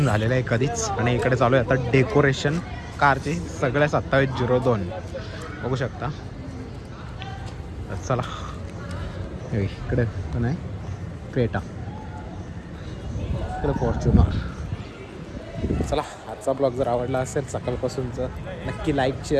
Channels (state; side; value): identical; both; correlation 1.00